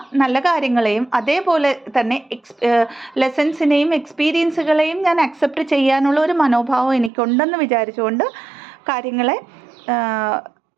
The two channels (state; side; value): drops out; left; at 7.1 s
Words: നല്ല കാര്യങ്ങളെയും അതേപോലെ തന്നെ ലെസൺസിനെയും എക്സ്പീരിയൻസുകളെയും ഞാൻ അക്സെപ്റ്റ് ചെയ്യാനുള്ള ഒരു മനോഭാവം എനിക്കുണ്ടെന്ന് വിചാരിച്ചുകൊണ്ട് കാര്യങ്ങളെ